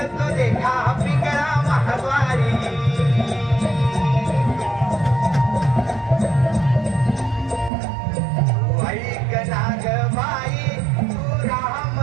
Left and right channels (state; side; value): drops out; left; at 7.7 s